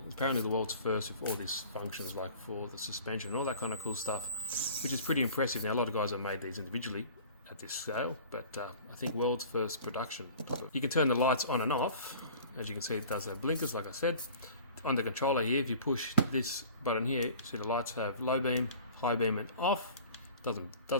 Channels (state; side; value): inverted; both; correlation -0.44